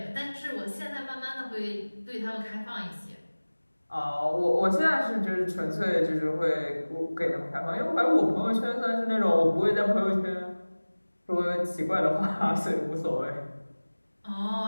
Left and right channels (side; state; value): both; inverted; correlation -1.00